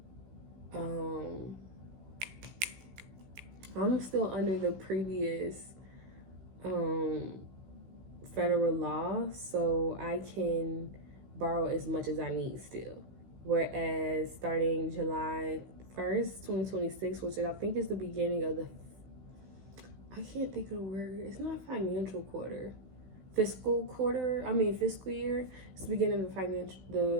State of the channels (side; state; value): left; late; 16 ms